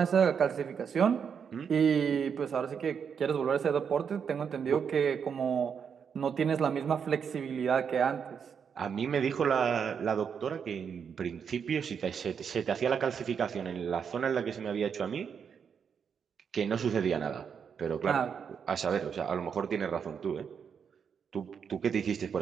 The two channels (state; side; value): quieter; left; 7.0 dB